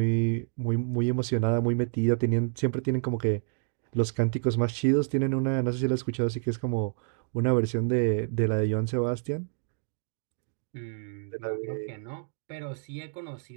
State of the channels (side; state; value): left; silent; digital silence